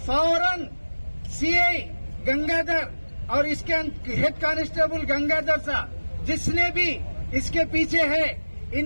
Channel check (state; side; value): inverted; both; correlation -1.00